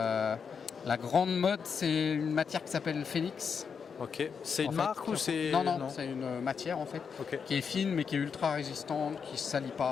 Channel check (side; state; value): right; quieter; 6.3 dB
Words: La grande mode, c'est une matière qui s'appelle Phoenix. Ok. C'est En une fait, marque ou c'est. Non, c'est une matière en fait Ok. qui est fine mais qui est ultra résistante, qui ne se salit